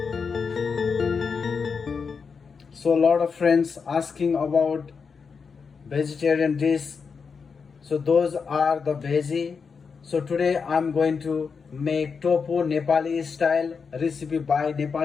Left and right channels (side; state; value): right; quieter; 5.5 dB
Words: So a lot of friends asking about vegetarian dish. So those are the veggie. So today I'm going to make tofu Nepali style recipe by